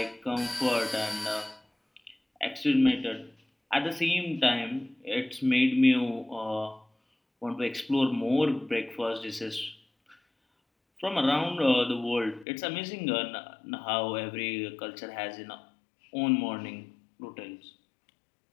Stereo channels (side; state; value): right; drops out; at 12.5 s